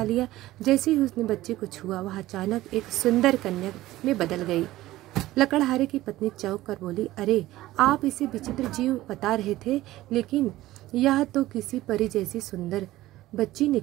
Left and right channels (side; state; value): left; quieter; 16.3 dB